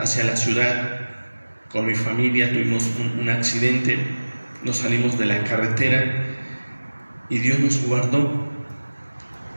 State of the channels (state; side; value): inverted; both; correlation -1.00